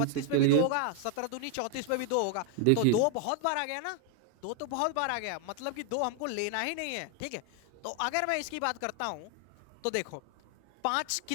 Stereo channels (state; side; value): different; both; correlation 0.00